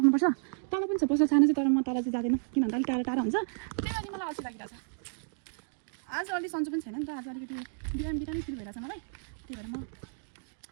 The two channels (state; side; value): silent; left; digital silence